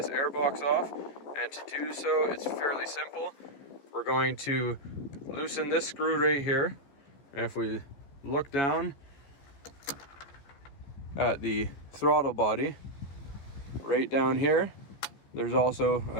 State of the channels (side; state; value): right; late; 14 ms